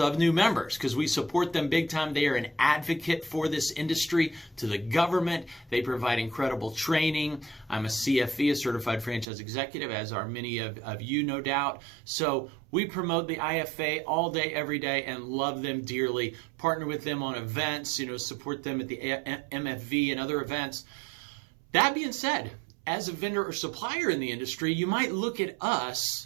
new members because we support them big time. They are an advocate for this industry to the government. They provide incredible training. I'm a CFE, a Certified Franchise Executive, as are many of you, no doubt. So we promote the IFA all day, every day, and love them dearly. Partner with them on events, support them at the MFV and other events. That being said, as a vendor or supplier in the industry, you might look at us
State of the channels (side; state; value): left; drops out; at 9.2 s